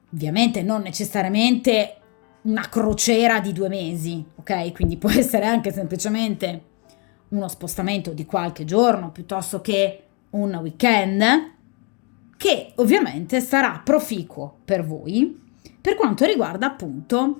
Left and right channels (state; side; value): quieter; right; 33.2 dB